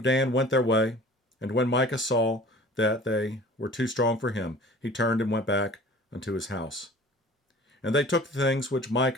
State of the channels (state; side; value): normal; both; correlation 0.45